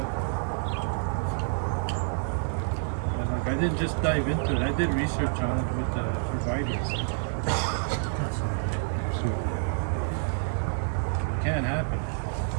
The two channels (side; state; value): left; silent; 59 dB below the other